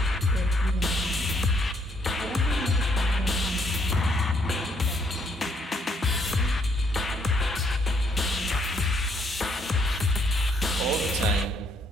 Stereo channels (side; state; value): both; normal; correlation 0.70